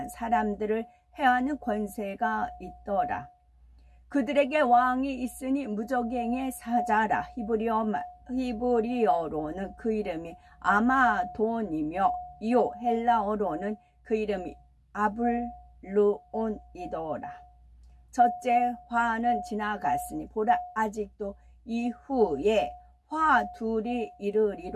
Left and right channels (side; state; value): both; identical; correlation 1.00